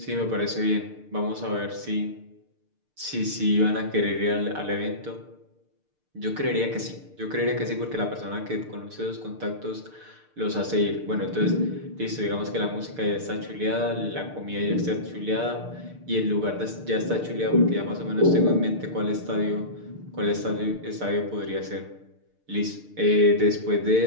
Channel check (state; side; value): late; left; 6.6 ms